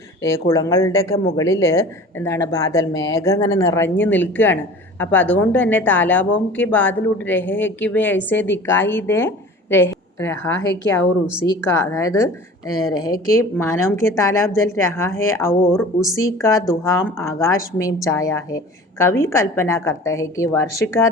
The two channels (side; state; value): both; normal; correlation 0.42